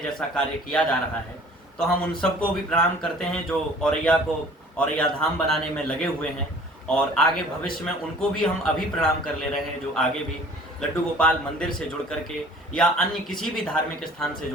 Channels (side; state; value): both; normal; correlation 0.49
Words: जैसा कार्य किया जा रहा है। तो हम उन सबको भी प्रणाम करते हैं जो औरैया को औरैया धाम बनाने में लगे हुए हैं, और आगे भविष्य में उनको भी हम अभी प्रणाम कर ले रहे हैं, जो आगे भी लड्डू गोपाल मंदिर से जुड़ करके या अन्य किसी भी धार्मिक स्थान से